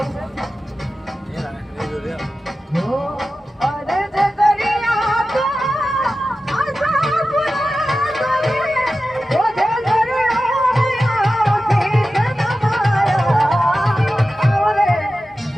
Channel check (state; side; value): normal; both; correlation 0.94